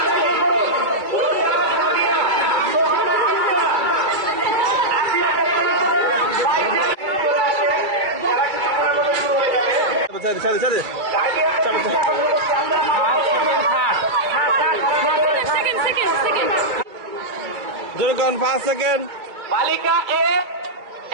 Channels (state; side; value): late; left; 2.3 ms